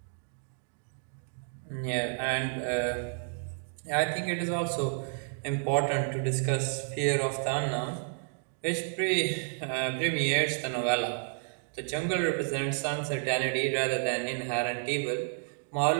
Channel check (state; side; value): silent; left; 57 dB below the other